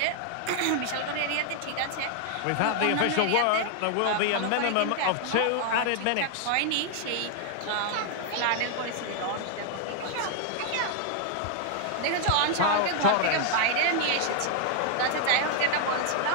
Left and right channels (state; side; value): different; both; correlation 0.00